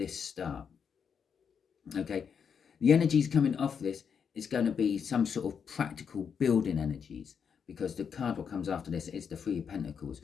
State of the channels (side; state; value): right; quieter; 6.9 dB